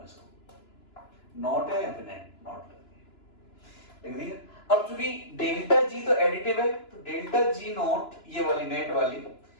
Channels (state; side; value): late; right; 2.9 ms